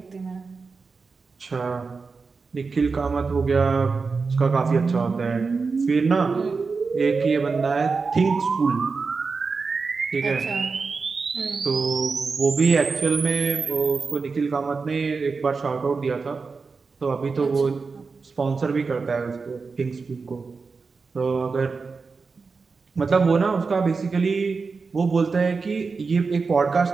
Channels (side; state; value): left; quieter; 4.6 dB